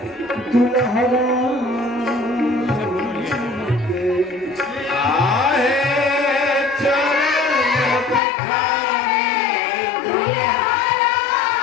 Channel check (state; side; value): drops out; right; at 8.2 s